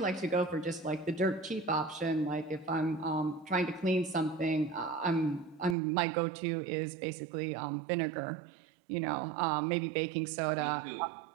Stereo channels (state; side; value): drops out; left; at 5.8 s